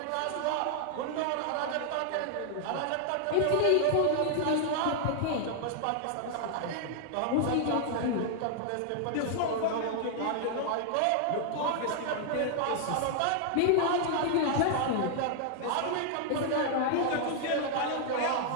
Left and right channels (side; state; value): both; different; correlation 0.00